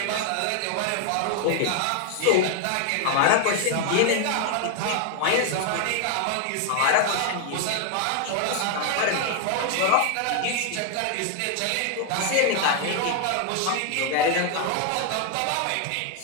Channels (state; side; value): different; both; correlation 0.00